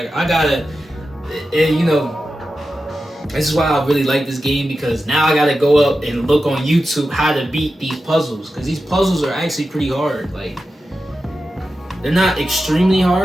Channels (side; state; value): both; normal; correlation 0.92